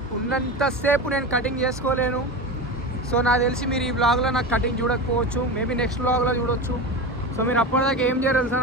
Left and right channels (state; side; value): normal; both; correlation 0.24